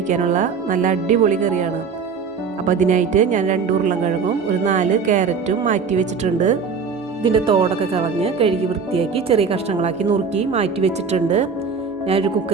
നല്ല അടിപൊളി കറിയാണ്. അപ്പോൾ അതിനായിട്ട് ഞാൻ 2 ഉരുളൻകിഴങ്ങും ഒരു 4 ക്യാരറ്റും മാറ്റി വെച്ചിട്ടുണ്ട്. ഇതിൻ്റെ തോടൊക്കെ കളഞ്ഞ് കഴുകി വൃത്തിയാക്കി ചെറിയ കഷ്ണങ്ങളാക്കി നുറുക്കി മാറ്റി വെച്ചിട്ടുണ്ട്. ഞാനൊരു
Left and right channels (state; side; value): quieter; left; 5.6 dB